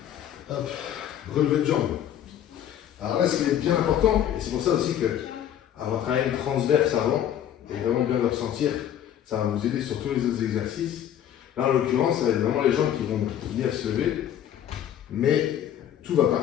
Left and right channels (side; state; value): right; quieter; 10.4 dB